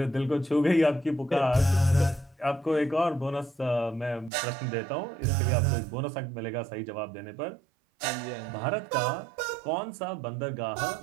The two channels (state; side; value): drops out; left; at 4.3 s